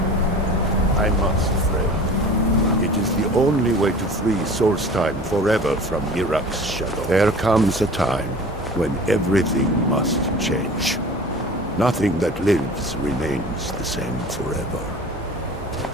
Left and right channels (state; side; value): normal; both; correlation 0.41